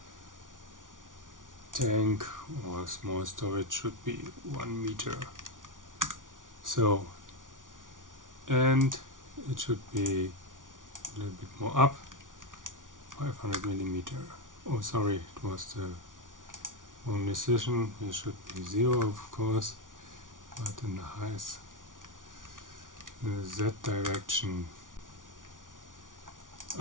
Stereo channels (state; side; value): late; left; 0.88 ms